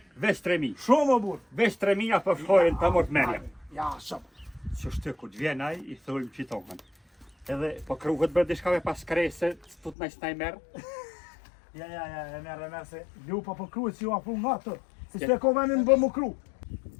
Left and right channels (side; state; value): right; drops out; at 10.0 s